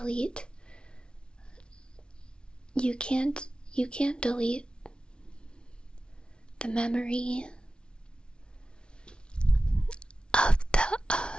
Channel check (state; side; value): late; right; 0.056 ms